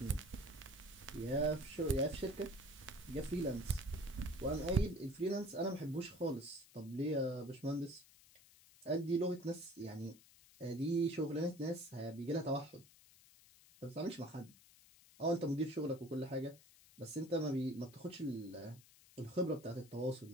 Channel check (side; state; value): left; noise; hiss, 24 dB below the sound